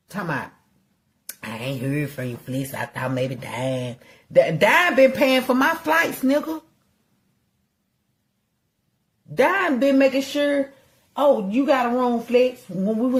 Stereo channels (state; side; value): identical; both; correlation 1.00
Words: Talking about, I ain't heard from you, Fleece. I thought maybe Dime. Dime been paying for my flights, nigga. Dime been making sure, oh, you got a room, Flex, when we